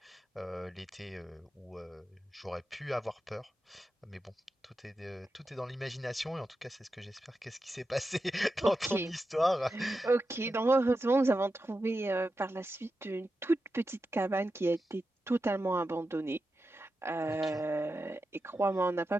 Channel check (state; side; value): normal; both; correlation 0.90